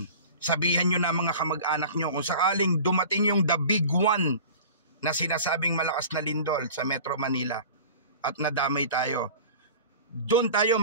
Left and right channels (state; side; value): inverted; both; correlation -0.39